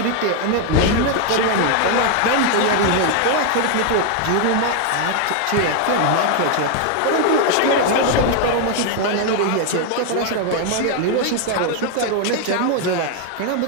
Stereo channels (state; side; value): different; both; correlation 0.00